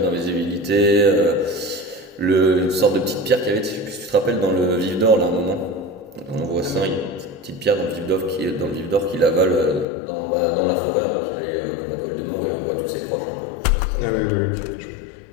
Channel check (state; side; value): drops out; right; at 9.9 s